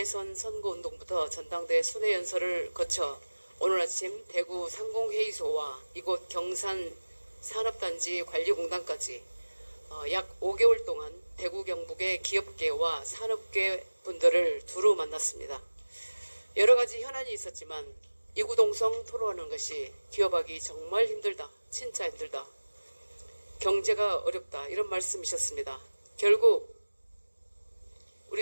선거운동부터 전당대 순회연설을 거쳐 오늘 아침 대구 상공회의소와 이곳 경산 산업단지 관리공단까지 약 5개월 동안 대구 경북의 기업계와 산업계 분들을 두루 만났습니다. 여러 가지 현안이 있었지만 이구동성 토론하는 것이 기업하기 정말 힘들다, 진짜 힘들다, 경제가 어렵다 이런 말씀이셨습니다. 결국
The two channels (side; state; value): both; inverted; correlation -1.00